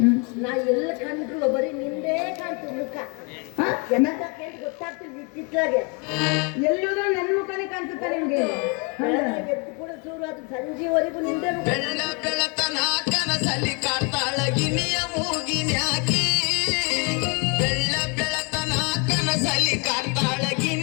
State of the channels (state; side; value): quieter; right; 33.3 dB